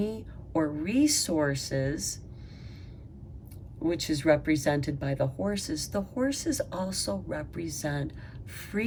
or resources, which is represented by the horses also represent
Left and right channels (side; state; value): both; identical; correlation 1.00